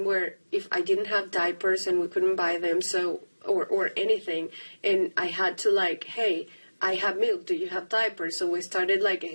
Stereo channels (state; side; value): inverted; both; correlation -1.00